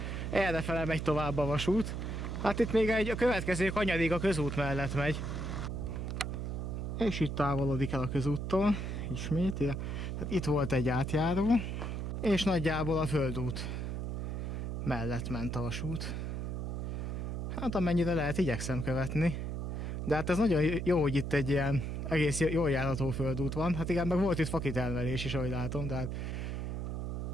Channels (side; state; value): right; noise; hum, 3 dB below the sound